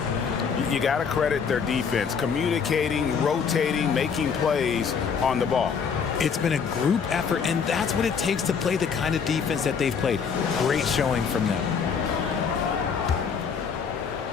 You got to credit their defense, communicating, rotating, making plays on the ball. It's been a group effort, and that's what it takes to play the kind of defense that they've played. Great showing from them.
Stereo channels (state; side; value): quieter; right; 6.3 dB